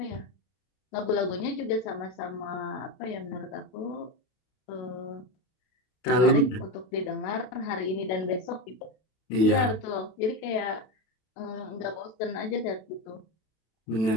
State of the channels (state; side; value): late; right; 32 ms